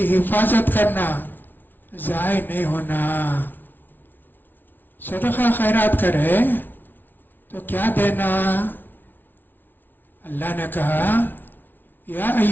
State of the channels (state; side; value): late; right; 0.091 ms